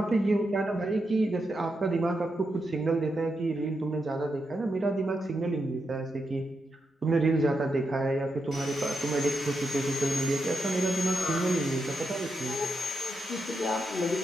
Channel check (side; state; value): both; normal; correlation 0.85